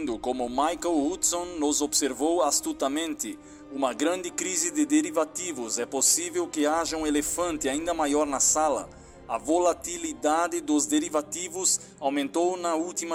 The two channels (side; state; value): both; identical; correlation 1.00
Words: como Michael Hudson nos observou astutamente. Uma grande crise de derivativos. É possível que haja um elefante ainda maior na sala. A volatilidade dos derivativos aumentou na